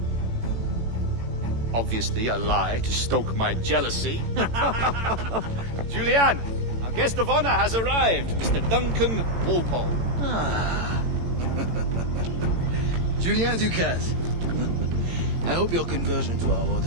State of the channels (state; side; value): late; left; 18 ms